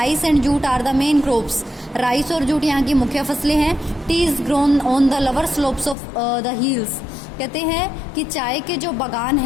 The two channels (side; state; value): right; drops out; at 6.0 s